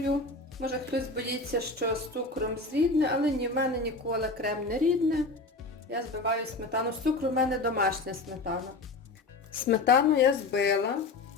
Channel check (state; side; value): quieter; right; 3.3 dB